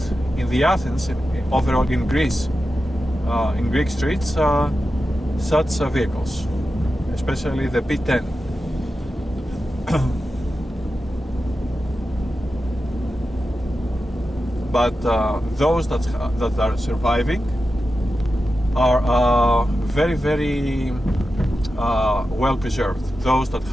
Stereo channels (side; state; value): both; normal; correlation 0.91